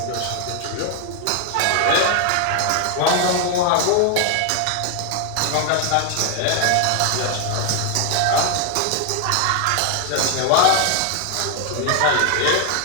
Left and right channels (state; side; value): different; both; correlation 0.01